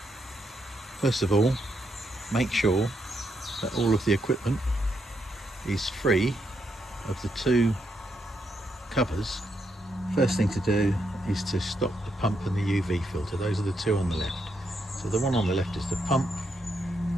First of all, make sure that all of the equipment is free of the two covers. First thing to do is to stop the pump and the UV filter. Those are the two on the left. So the one on the left is the pump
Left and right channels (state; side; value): normal; both; correlation 0.80